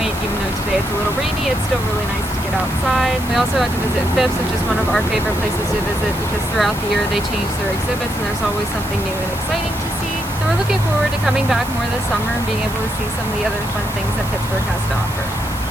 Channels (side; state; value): right; noise; hiss, 14 dB below the sound